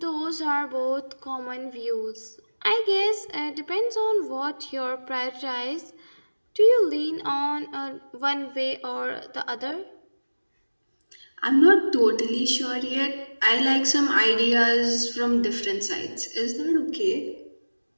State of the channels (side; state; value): both; inverted; correlation -1.00